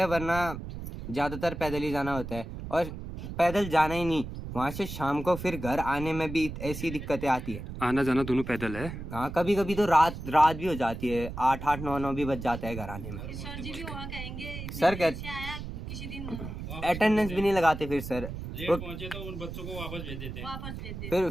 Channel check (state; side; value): noise; right; rumble, 8 dB below the sound